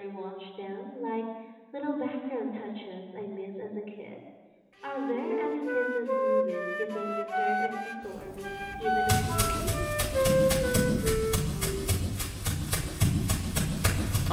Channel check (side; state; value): both; identical; correlation 1.00